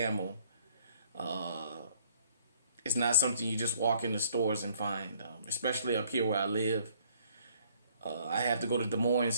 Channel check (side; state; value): both; inverted; correlation -0.62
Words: It's not something you just walk in the stores and find, especially up here where I live. I have to go to Des Moines